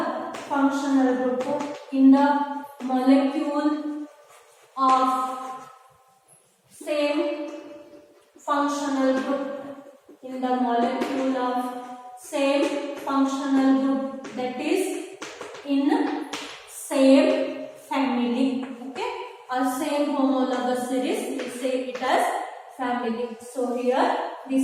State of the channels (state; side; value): identical; both; correlation 1.00